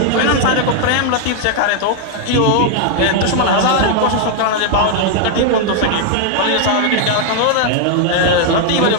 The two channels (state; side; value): different; both; correlation 0.00